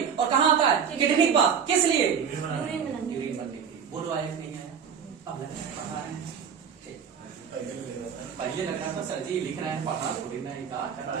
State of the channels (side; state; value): left; quieter; 7.2 dB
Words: और कहाँ आता है? किडनी के पास। किस लिए? यूरिन बनने के लिए। बोलो आया नहीं आया? अब पढ़ा रहे हैं, पहले लग रहा था सर जी लिख रहे हैं, पढ़ा थोड़ी ना,